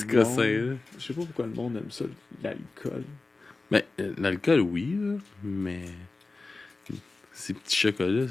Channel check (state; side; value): quieter; right; 3.5 dB